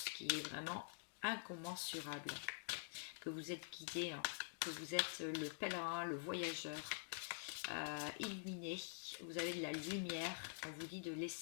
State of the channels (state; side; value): silent; right; digital silence